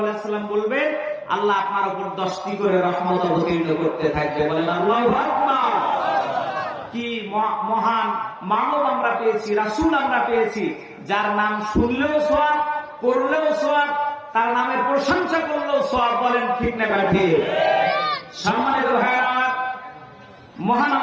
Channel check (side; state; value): both; identical; correlation 1.00